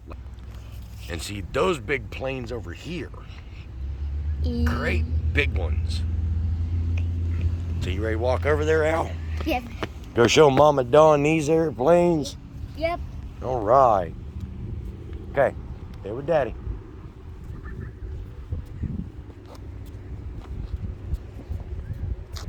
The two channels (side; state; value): both; identical; correlation 1.00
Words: and see those big planes over here. Great big ones. So you ready to walk over there, Al? Yep. Go show Mama Dawn these airplanes? Yep. All right. Okay, stay with Daddy.